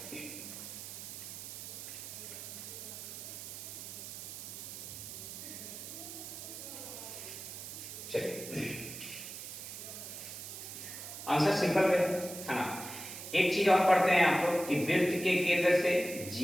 चलिए, आंसर सिंपल है ना। एक चीज और पढ़ते हैं आपको कि वृत्त के केंद्र से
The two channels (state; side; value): noise; right; hiss, 9 dB below the sound